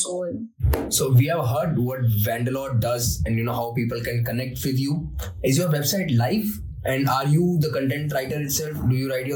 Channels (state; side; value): identical; both; correlation 1.00